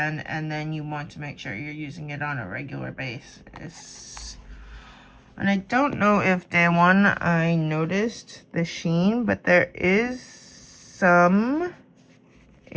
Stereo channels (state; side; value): identical; both; correlation 1.00